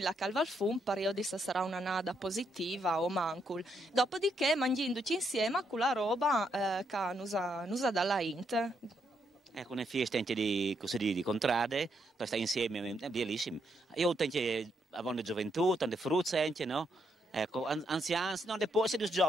la calva al fum per io disse sarà una nada positiva o mancul dopodiché mangiando insieme con la roba che nusa dalla int. Ecco, una festa anche di contrade, per stare insieme, è bellissimo. Io tengo a gioventù, tante fruzze anche, no? Ecco, anziani, no, poi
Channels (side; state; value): both; normal; correlation 0.77